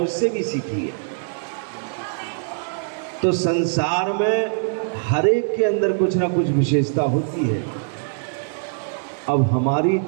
भी सीखी है। तो संसार में हर एक के अंदर कुछ ना कुछ विशेषता होती है। अब हमारी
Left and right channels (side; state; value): left; silent; digital silence